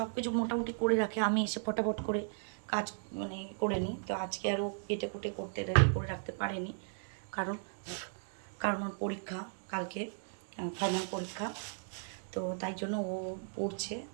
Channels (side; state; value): left; silent; digital silence